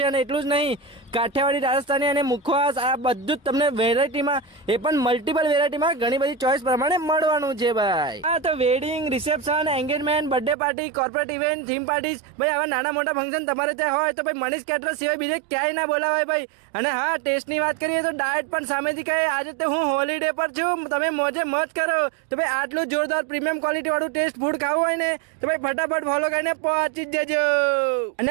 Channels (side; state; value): left; drops out; at 10.6 s